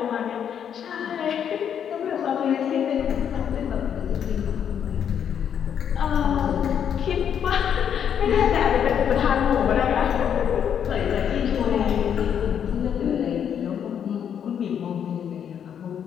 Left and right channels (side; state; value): right; quieter; 8.5 dB